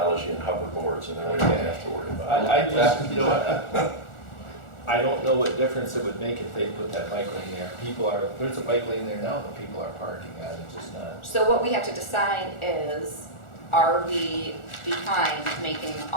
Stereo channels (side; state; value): right; late; 1.4 ms